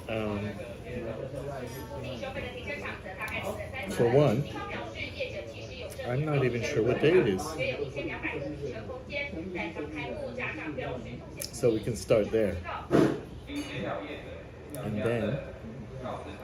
For one, I'm not even sure what day it is. So we can start there. And then,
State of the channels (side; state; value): both; identical; correlation 1.00